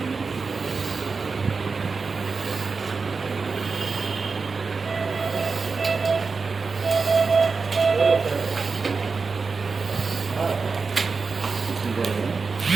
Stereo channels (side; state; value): left; quieter; 4.6 dB